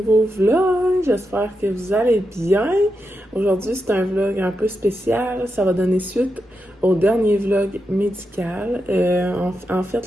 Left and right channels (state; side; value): normal; both; correlation 0.87